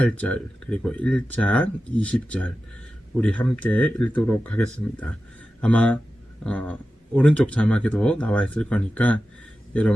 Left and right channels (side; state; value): both; normal; correlation 0.93